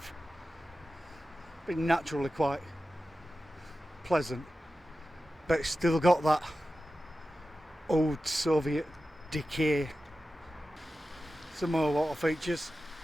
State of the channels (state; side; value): normal; both; correlation 0.94